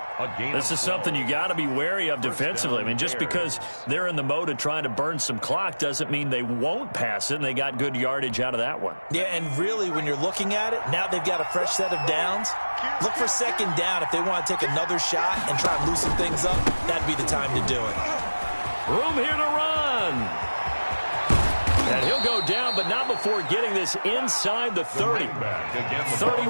This is something you got to be wary of defensively. I mean, just because they're in the mode of trying to burn some clock doesn't mean they won't pass it, and they got good yardage out of that one. Yeah, and really, when you're looking at it, now they've got a fresh set of downs. Look for second down. If they want to take another shot and try and loosen things up, that'd be the time to do it. Room here to run. And he'll go down, but not before getting this inside the 30.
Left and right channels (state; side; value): inverted; both; correlation -1.00